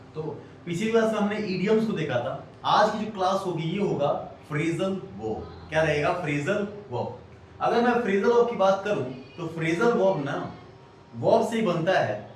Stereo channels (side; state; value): both; identical; correlation 1.00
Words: तो पिछली क्लास में हमने इडियम्स को देखा था। आज की जो क्लास होगी ये होगा फ्रेजल वर्ब। क्या रहेगा? Phrasal verb. अगर मैं फ्रेजल वर्ब की बात करूं तो फ्रेजल वर्ब ना वर्ब से ही बनता है